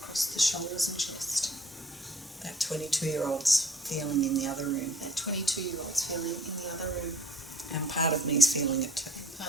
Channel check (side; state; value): both; normal; correlation 0.54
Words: the shoulders and chest. That 22-year-old's feeling in the other room. That 22-year-old's feeling in the other room. And part of me's feeling it too.